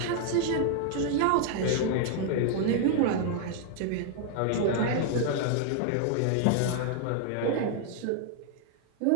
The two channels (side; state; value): both; different; correlation 0.00